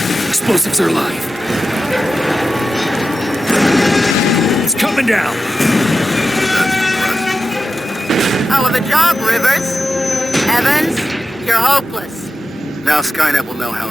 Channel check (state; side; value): normal; both; correlation 0.90